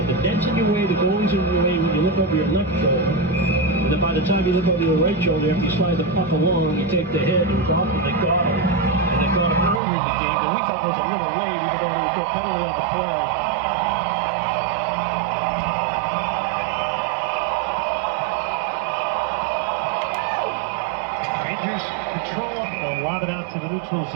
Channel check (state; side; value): drops out; left; at 9.8 s